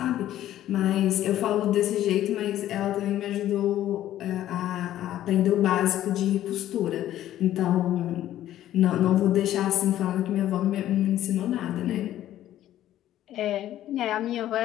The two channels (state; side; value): quieter; right; 12.8 dB